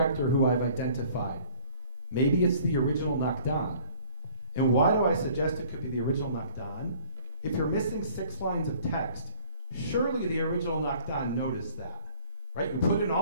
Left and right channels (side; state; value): both; inverted; correlation -0.53